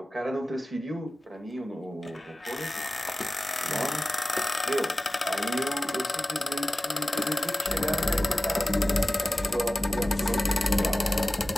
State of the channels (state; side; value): normal; both; correlation 0.96